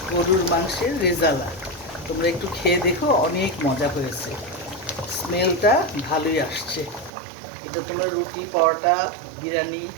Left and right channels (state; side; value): drops out; left; at 7.1 s